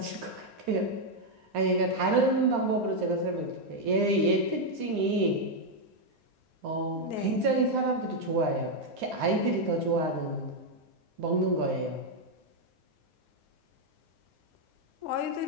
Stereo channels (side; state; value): left; late; 9.7 ms